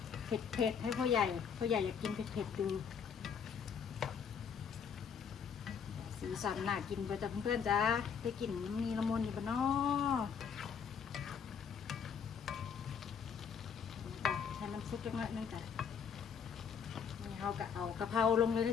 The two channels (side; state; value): right; quieter; 6.9 dB